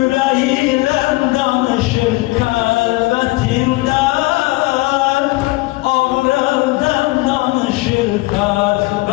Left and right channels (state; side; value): quieter; right; 22.2 dB